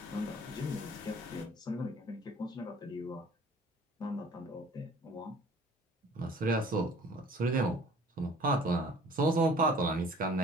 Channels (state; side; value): normal; both; correlation 0.51